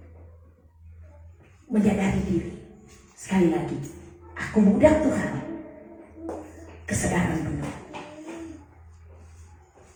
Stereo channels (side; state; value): both; identical; correlation 1.00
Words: menyadari diri. Sekali lagi, aku mudah Tuhan. Kesadaran penuh.